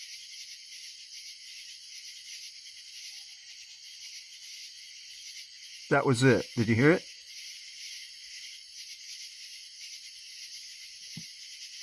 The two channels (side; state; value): both; identical; correlation 1.00